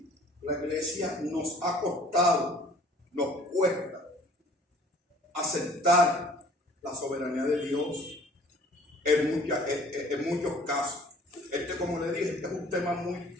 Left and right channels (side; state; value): both; normal; correlation 0.53